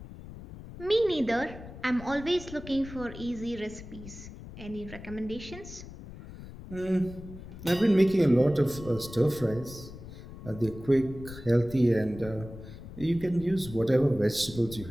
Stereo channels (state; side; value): noise; left; rumble, 14 dB below the sound